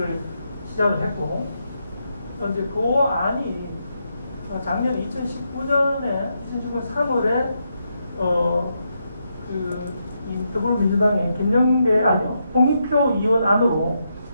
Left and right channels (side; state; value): both; inverted; correlation -0.81